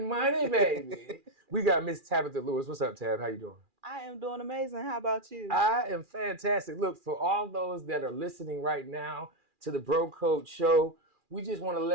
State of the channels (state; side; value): late; left; 2.4 ms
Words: baby. We got Miss Tabitha Lewis. What's up, Tab? How you doing? I am doing amazing. How about you? I am fantastic. Look, for all those that are listening right now to the Bro Code Show, we just want to